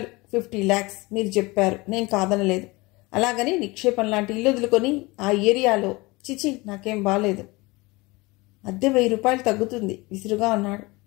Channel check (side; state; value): right; quieter; 23.4 dB